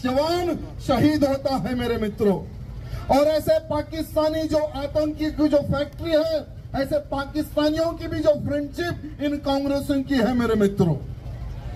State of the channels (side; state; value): both; identical; correlation 1.00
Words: शहीद होता है मेरे मित्रों। और ऐसे पाकिस्तानी जो आतंकी की जो फैक्ट्री है, ऐसे पाकिस्तानियों की भी जो फ्रेंडशिप इन कांग्रेसियों की है मेरे मित्रों।